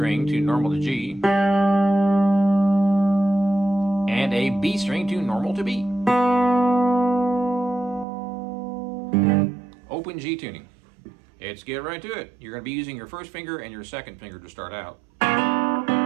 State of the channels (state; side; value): drops out; left; at 8.1 s